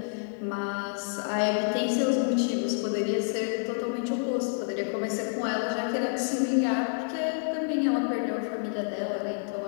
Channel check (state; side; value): silent; right; digital silence